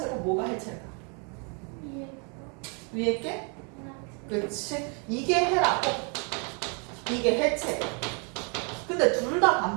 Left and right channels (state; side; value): quieter; left; 36.7 dB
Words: 뭐가 해체일까? 위에 게? 그렇지. 이게 헤라고 이게 해체예요. 근데 둘 다